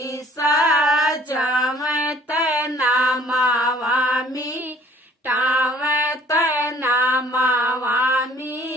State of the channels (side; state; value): both; normal; correlation 0.55